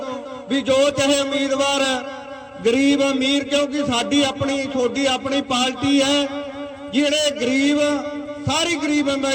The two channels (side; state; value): both; identical; correlation 1.00